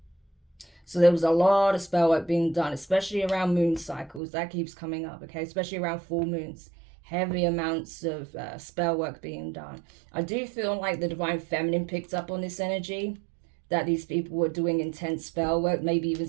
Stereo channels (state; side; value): drops out; left; at 4.2 s